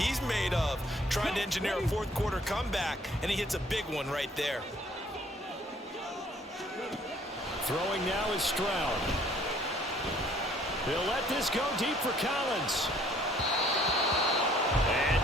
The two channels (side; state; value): both; normal; correlation 0.60